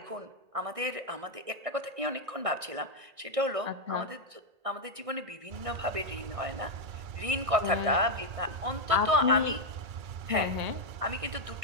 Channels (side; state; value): left; late; 1.6 ms